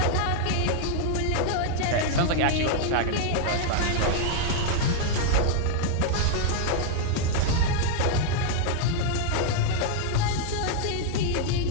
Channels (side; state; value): both; different; correlation 0.00